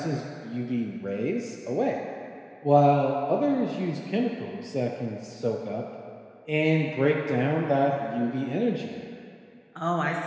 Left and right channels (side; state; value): both; identical; correlation 1.00